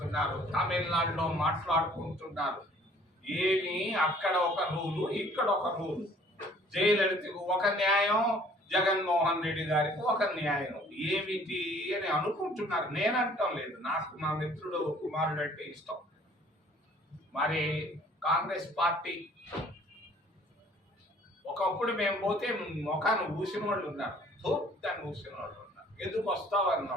తమిళనాడులో మాట్లాడుకుంటున్నారు. ఏమి అక్కడ ఒక రూలు, ఇక్కడ ఒక రూలు. జయలలితకు ఒక న్యాయం, జగన్మోహన్ రెడ్డి గారికి ఒక న్యాయం. ఏమిటి అని అనుకుంటున్నారు. నేనంటాం లేదు, నాకు మా మిత్రుడు కుమారుడు అంటే ఇష్టం. మరి కాంగ్రెస్ పార్టీ ఒకప్పుడు మేము పోతే ముఖాన్ని ఊసిన వాళ్ళు ఉన్నారు, దాన్ని ఊసిన వాళ్ళు ఉన్నారు. ఎందుకు వస్తావు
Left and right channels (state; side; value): normal; both; correlation 0.56